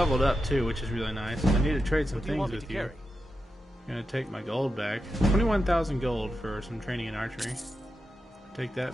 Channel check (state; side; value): normal; both; correlation 0.89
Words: up too, which is really nice. I need to trade some things with you. I'm gonna take my gold back. 21,000 gold for some training in archery. Take